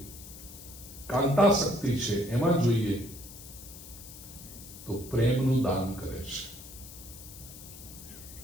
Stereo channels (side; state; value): left; noise; hiss, 15 dB below the sound